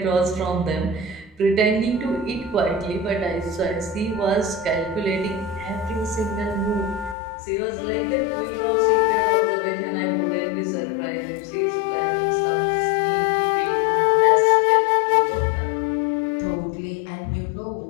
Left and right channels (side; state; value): right; drops out; at 7.2 s